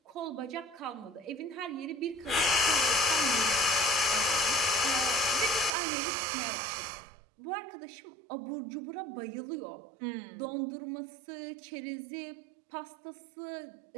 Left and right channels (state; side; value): drops out; left; at 5.7 s